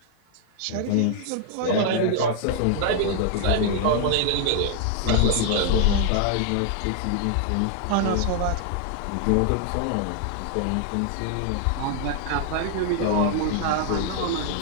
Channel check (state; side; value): different; both; correlation 0.00